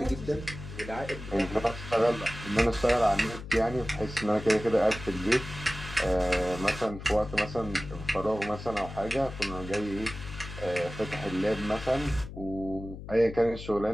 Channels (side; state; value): left; noise; hum, 11 dB below the sound